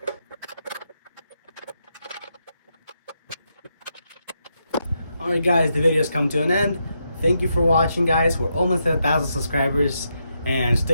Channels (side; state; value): both; inverted; correlation -0.82